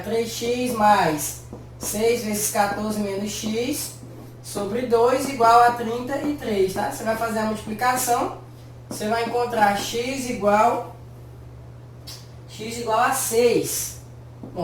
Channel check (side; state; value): both; identical; correlation 1.00